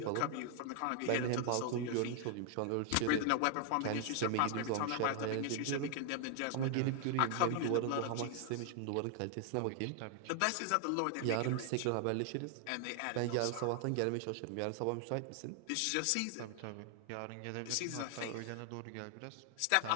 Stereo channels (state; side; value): different; both; correlation 0.00